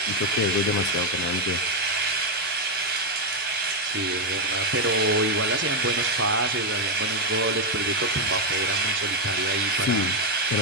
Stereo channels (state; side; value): normal; both; correlation 0.02